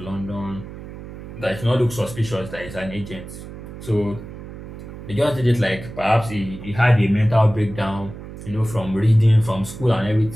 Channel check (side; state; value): right; noise; hum, 13 dB below the sound